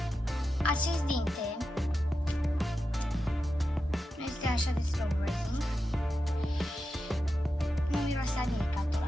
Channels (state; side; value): normal; both; correlation 0.90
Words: Acest dinte nu este așa de slow rising, nu miroase a nimica tot